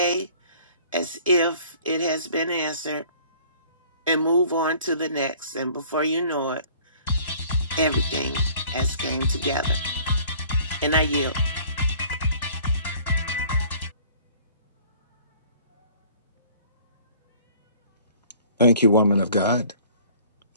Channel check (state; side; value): inverted; both; correlation -0.52